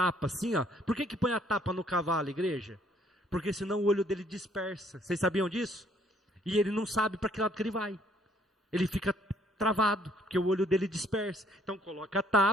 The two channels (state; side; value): normal; both; correlation 0.63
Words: assim, ó. Por que põe a tapa no cavalo, igreja? Porque senão o olho dele dispersa. Vocês sabiam disso? E ele não sabe para que lado que ele vai. Ele fica travado, porque o olho dele dispersa. Então coloca a